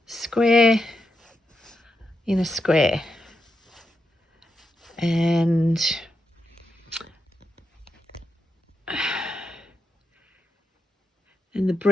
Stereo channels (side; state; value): both; normal; correlation 0.84